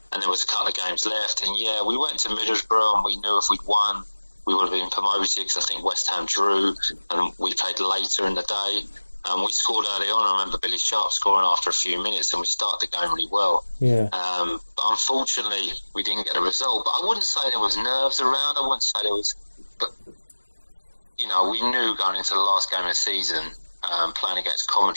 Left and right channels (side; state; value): both; inverted; correlation -1.00